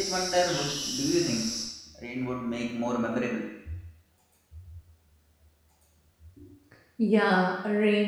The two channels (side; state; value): both; identical; correlation 1.00